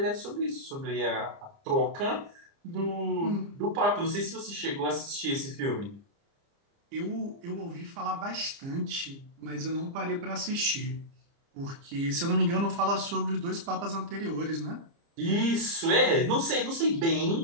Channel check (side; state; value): left; late; 30 ms